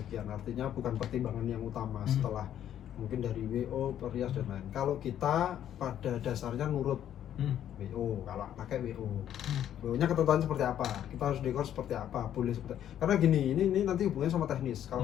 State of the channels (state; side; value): quieter; right; 10.6 dB